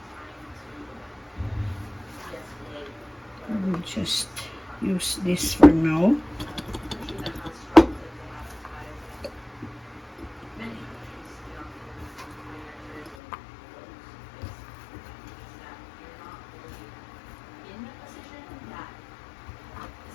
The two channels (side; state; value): right; drops out; at 13.2 s